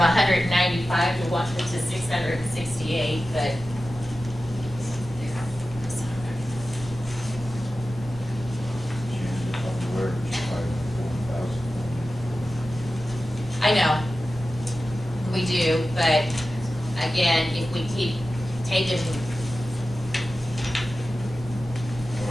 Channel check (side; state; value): both; normal; correlation 0.94